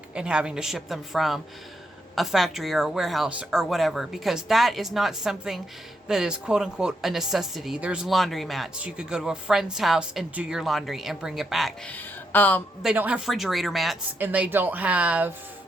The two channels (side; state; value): both; normal; correlation 0.80